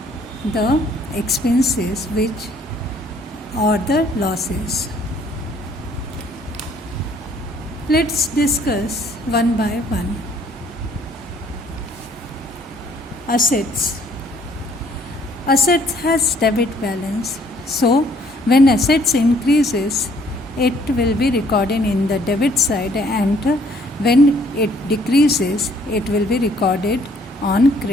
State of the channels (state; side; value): normal; both; correlation 0.62